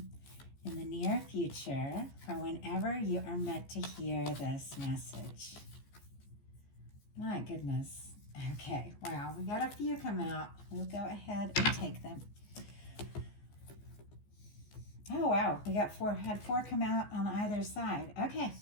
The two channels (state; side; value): late; right; 14 ms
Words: in the near future for whenever you are meant to hear this message? My goodness. Okay, wow, we got a few come out. We'll go ahead and take them. Oh, wow, we got had four come out on either side. Okay,